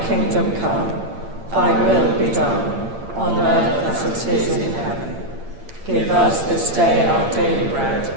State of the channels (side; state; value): left; late; 8.8 ms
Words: kingdom come, thy will be done, on earth as it is in heaven. Give us this day our daily bread,